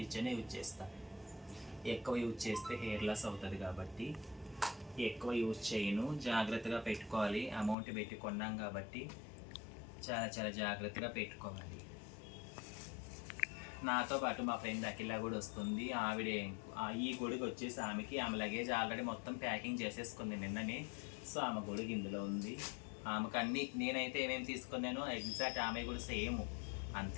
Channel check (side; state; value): right; drops out; at 7.8 s